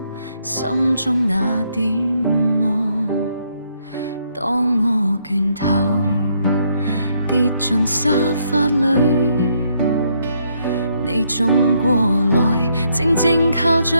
心中那點望。當我倦透跌進沙發裏，你總過來靜靜靠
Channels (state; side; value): inverted; both; correlation -0.73